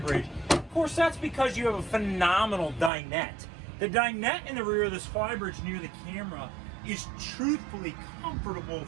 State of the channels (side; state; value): left; drops out; at 2.9 s